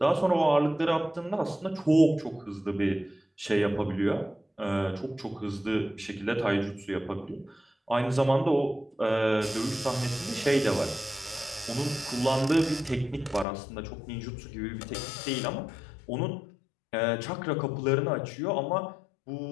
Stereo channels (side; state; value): right; drops out; at 13.5 s